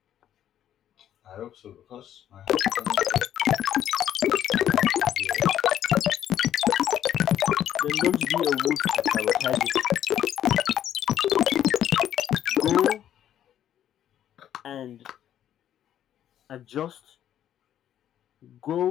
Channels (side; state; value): right; quieter; 10.7 dB